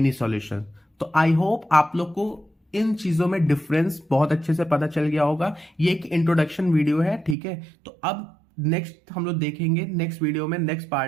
solutions। तो आई होप आप लोग को इन चीजों में डिफरेंस बहुत अच्छे से पता चल गया होगा। ये एक इंट्रोडक्शन वीडियो है, ठीक है। तो अब नेक्स्ट हम लोग देखेंगे, नेक्स्ट वीडियो में नेक्स्ट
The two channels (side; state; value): left; drops out; at 7.4 s